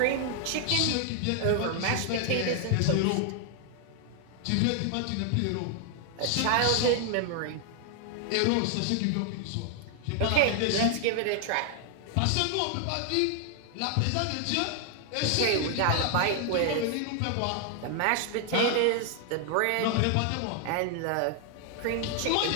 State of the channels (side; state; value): both; different; correlation 0.00